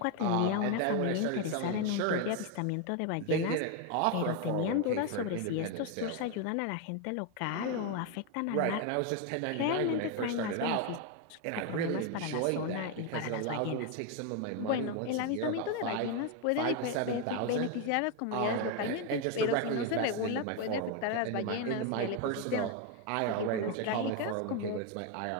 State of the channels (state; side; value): different; both; correlation 0.02